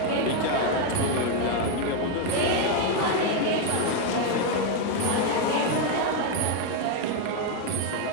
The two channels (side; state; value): both; different; correlation 0.01